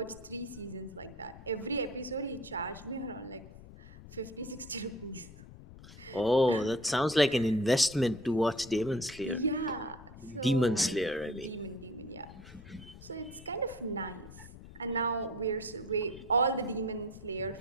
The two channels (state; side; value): noise; left; rumble, 17 dB below the sound